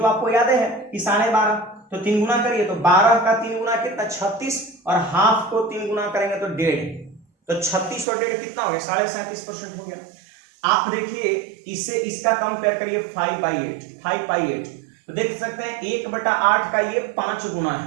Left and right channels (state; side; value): drops out; left; at 8.1 s